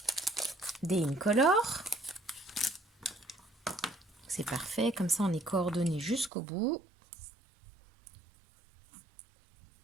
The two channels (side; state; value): left; drops out; at 6.3 s